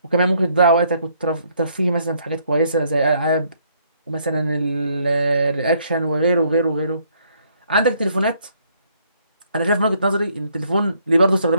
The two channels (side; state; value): both; inverted; correlation -0.68